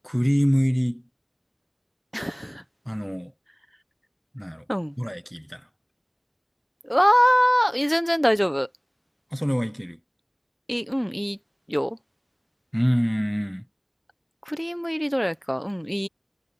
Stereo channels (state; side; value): identical; both; correlation 1.00